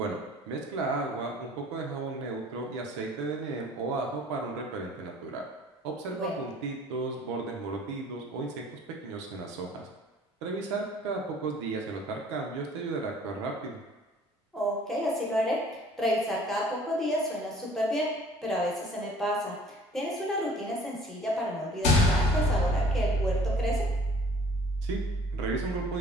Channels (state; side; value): normal; both; correlation 0.52